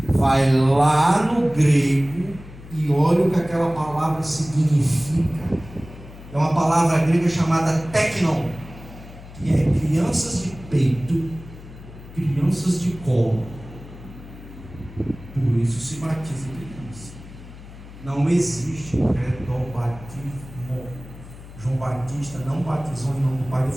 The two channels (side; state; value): left; noise; hum, 17 dB below the sound